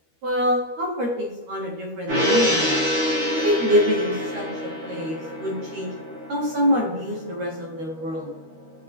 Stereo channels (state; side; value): late; left; 13 ms